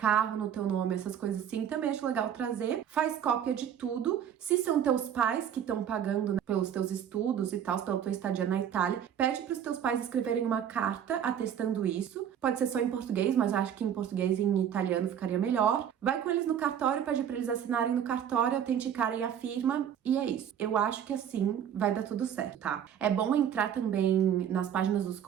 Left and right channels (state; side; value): quieter; left; 9.2 dB